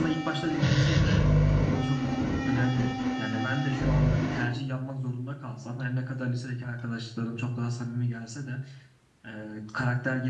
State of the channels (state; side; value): identical; both; correlation 1.00